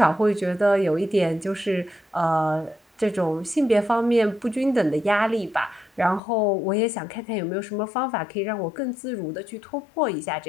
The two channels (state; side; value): drops out; right; at 6.2 s